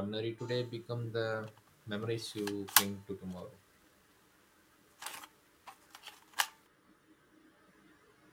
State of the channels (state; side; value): identical; both; correlation 1.00